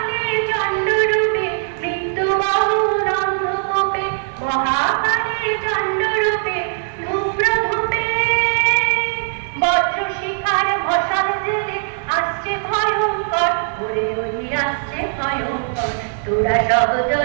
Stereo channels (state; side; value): silent; left; 55 dB below the other